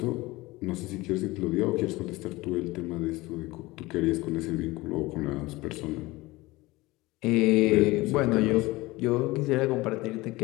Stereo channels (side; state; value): right; quieter; 20.7 dB